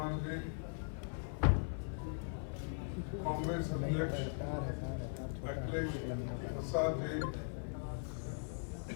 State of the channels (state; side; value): silent; right; 51 dB below the other